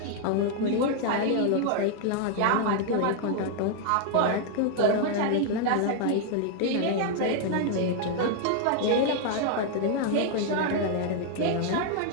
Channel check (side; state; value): both; different; correlation 0.00